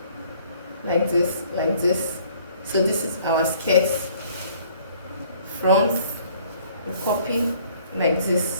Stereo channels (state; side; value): inverted; both; correlation -0.58